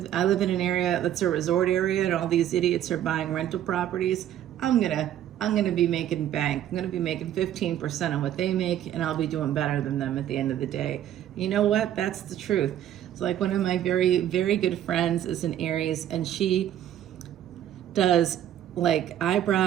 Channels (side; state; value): left; quieter; 11.3 dB